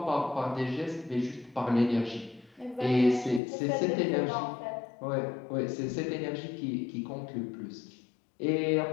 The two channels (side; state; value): right; drops out; at 3.4 s